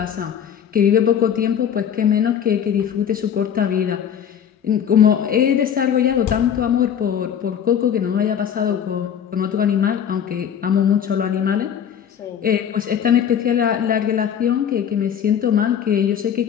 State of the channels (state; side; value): quieter; right; 8.6 dB